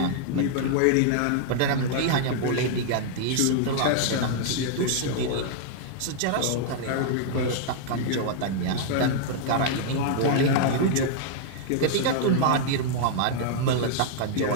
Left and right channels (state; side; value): different; both; correlation -0.01